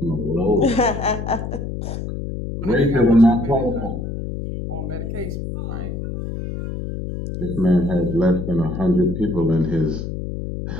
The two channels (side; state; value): left; noise; hum, 6 dB below the sound